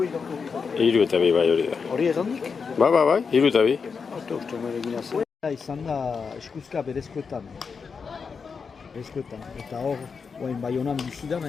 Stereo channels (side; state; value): right; quieter; 5.5 dB